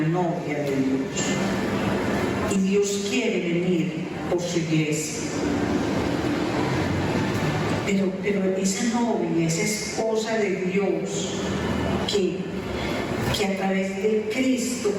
novia de Dios. Y Dios quiere venir por su iglesia. Pero esa novia, esa esposa de Dios que a través de Cristo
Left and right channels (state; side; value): identical; both; correlation 1.00